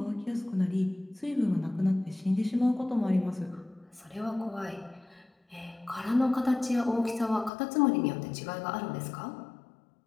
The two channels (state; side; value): drops out; right; at 7.5 s